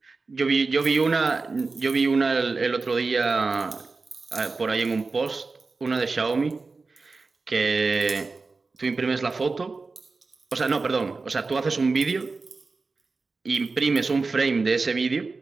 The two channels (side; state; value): left; quieter; 4.0 dB